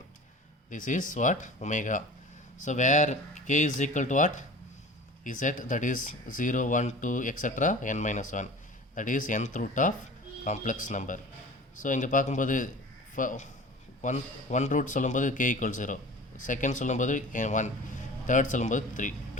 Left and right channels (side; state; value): both; normal; correlation 0.40